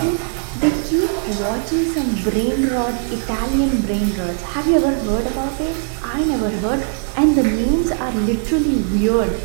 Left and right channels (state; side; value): silent; left; digital silence